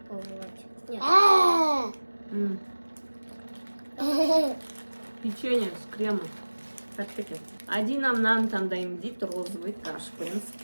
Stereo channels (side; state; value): both; inverted; correlation -1.00